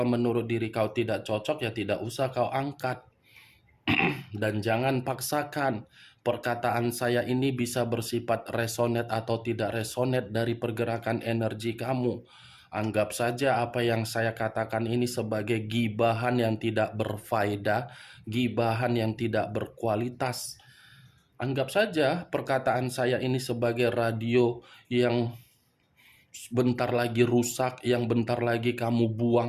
menurut diri kau tidak cocok ya tidak usah kau angkat. Dan jangan paksakan. Perkataan saya ini bisa bersifat resonate atau tidak resonate dari pergerakan energi kamu. Anggap saja apa yang saya katakan ini sebagai gibahan yang tidak berfaedah, gibahan yang tidak berkualitas. Anggap saja perkataan saya ini sebagai radio yang bentar lagi rusak, yang bentar lagi kamu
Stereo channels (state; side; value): identical; both; correlation 1.00